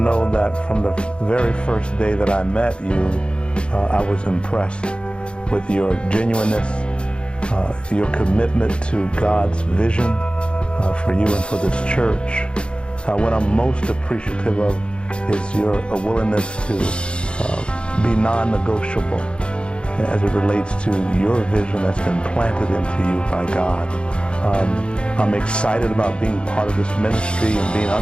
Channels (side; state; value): right; late; 0.055 ms